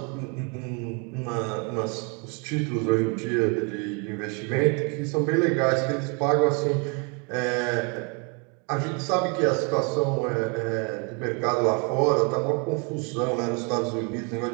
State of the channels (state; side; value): quieter; left; 34.3 dB